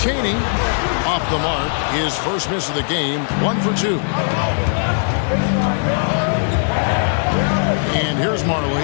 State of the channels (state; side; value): silent; right; digital silence